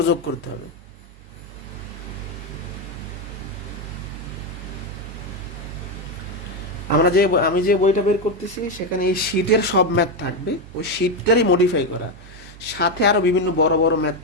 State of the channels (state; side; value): normal; both; correlation 0.08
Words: যোগ করতে হবে। আমি যে বইটা বের করতেছি সেখানে এই শীটের সব ম্যাথ থাকবে, ওই শীটটারই মডিফাই করা, সাথে আরো বিভিন্ন বড় বড় ম্যাথ